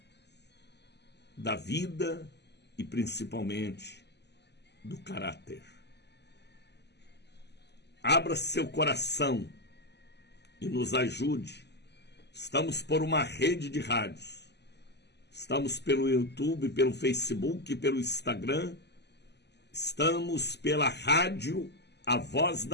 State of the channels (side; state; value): right; late; 0.50 ms